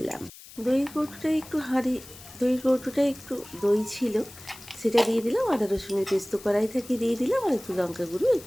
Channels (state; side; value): noise; left; hiss, 19 dB below the sound